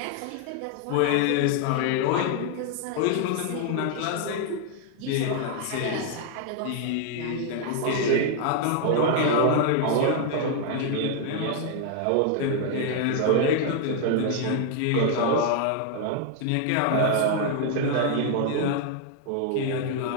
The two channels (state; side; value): different; both; correlation 0.00